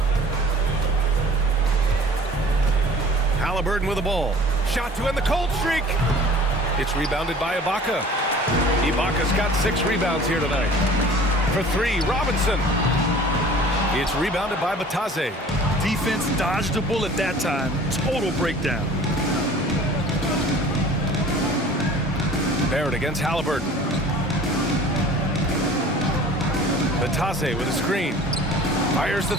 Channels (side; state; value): both; normal; correlation 0.46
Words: Halliburton with the ball. Shot to end the cold streak. It's rebounded by Ibaka. Ibaka's got 6 rebounds here tonight. For 3, Robinson. It's rebounded by Batase. Defense dodged the bullet that time. Total breakdown. Barrett against Halliburton. Batase with a screen. Fires the